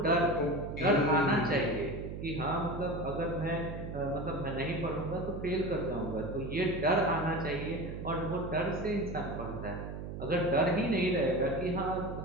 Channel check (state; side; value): noise; right; hum, 7 dB below the sound